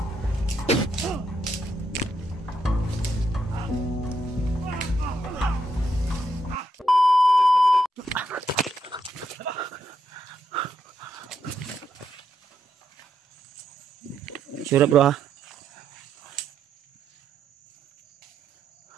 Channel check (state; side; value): normal; both; correlation 0.79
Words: Sure bro ha.